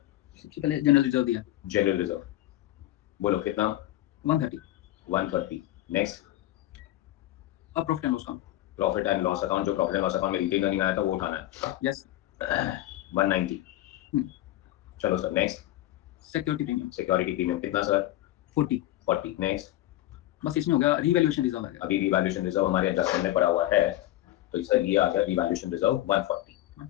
सबसे पहले जनरल रिजर्व दिया जनरल रिजर्व. बोलो कितना? 130. 130. नेक्स्ट अब profit and loss account. Profit and loss account. जो प्रॉफिट एंड लॉस अकाउंट में रिटेन अर्निंग आया था वो उठाना है. यस. 190. चलो sir next security premium security premium कितना सर? 40. 40. नेक्स्ट बस इसमें हो गया रीवैल्यूएशन रिजर्व आ गया. अभी रिवैल्यूएशन रिजर्व हमारे एडजस्टमेंट में पड़ा हुआ है तो सर ये आ गया रिवैल्यूएशन रिजर्व 140.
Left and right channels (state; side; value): quieter; right; 15.0 dB